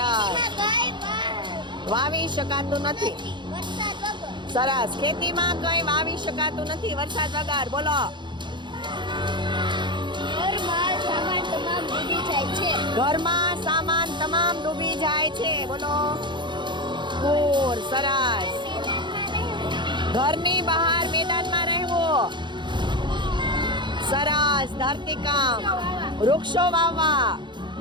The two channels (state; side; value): late; left; 0.23 ms